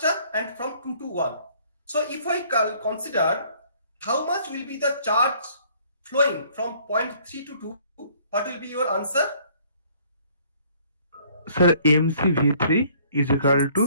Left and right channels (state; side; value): inverted; both; correlation -0.59